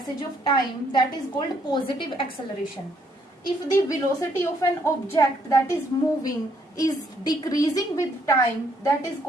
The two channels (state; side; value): normal; both; correlation 0.69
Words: of time, that is called positive acceleration। If the velocity of an object that is moving is decreasing with time, that is